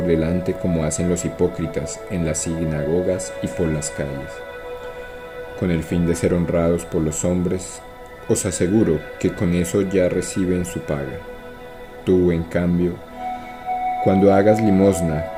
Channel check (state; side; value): identical; both; correlation 1.00